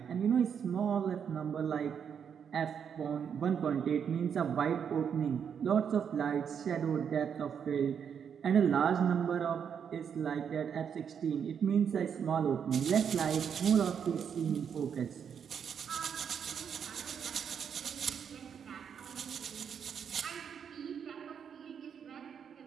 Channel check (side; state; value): left; quieter; 7.5 dB